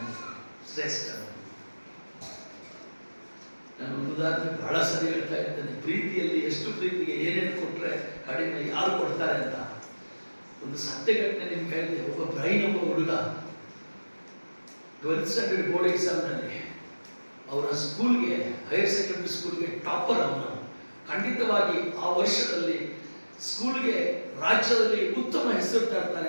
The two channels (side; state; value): both; inverted; correlation -1.00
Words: ಶ್ರೇಷ್ಠ. ನಾನು ಒಂದು ಉದಾಹರಣೆ ಬಹಳ ಸರಿ ಹೇಳ್ತಾ ಇದ್ದೇನೆ. ಪ್ರೀತಿಯಲ್ಲಿ ಎಷ್ಟು ಪ್ರೀತಿಗೆ ಏನೇನು ಕೊಟ್ಟರೆ ಕಡಿಮೆ ಯಾರು ಕೊಡ್ತಾರೆ ಅಂತ. ಒಂದು ಸತ್ಯ ಘಟನೆ ನಿಮ್ಗೆ ಹೇಳಿದೆ. ಒಬ್ಬ ಬ್ರೈನ್ ಒಬ್ಬ ಹುಡುಗ 12th ಸ್ಟ್ಯಾಂಡರ್ಡ್ ಬೋರ್ಡ್ ಎಕ್ಸಾಮ್ನಲ್ಲಿ ಅವರ ಸ್ಕೂಲ್ಗೆ, ಹೈಯರ್ ಸೆಕೆಂಡರಿ ಸ್ಕೂಲ್ಗೆ ಟಾಪರ್ ಅವನು. ಖಂಡಿತವಾಗಿ ಆ ವರ್ಷದಲ್ಲಿ ಸ್ಕೂಲ್ಗೆ ರಾಜ್ಯದಲ್ಲಿ ಉತ್ತಮ ಹೆಸರು